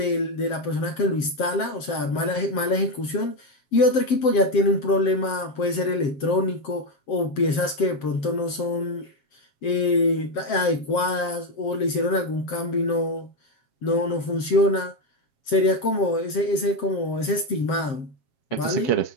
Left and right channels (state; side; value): late; right; 7.5 ms